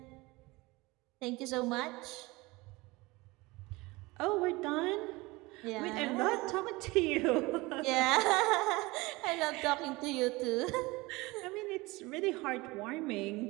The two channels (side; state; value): left; quieter; 22.5 dB